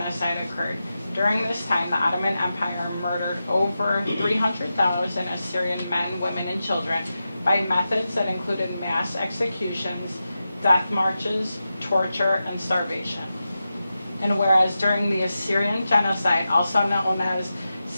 occurred. During this time, the Ottoman Empire murdered over 300,000 Assyrian men, women, and children by methods that included mass executions, death marches, torture, and starvation. And whereas during the Assyrian genocide, also known as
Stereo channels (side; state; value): both; inverted; correlation -0.91